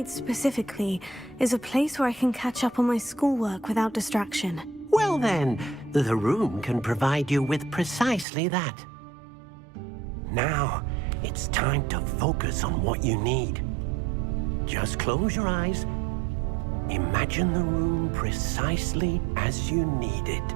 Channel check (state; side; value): drops out; left; at 8.2 s